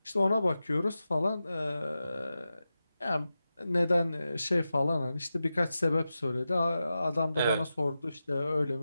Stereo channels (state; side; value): inverted; both; correlation -0.92